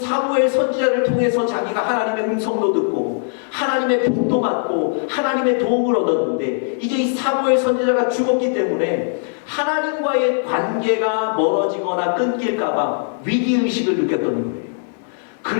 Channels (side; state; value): right; silent; digital silence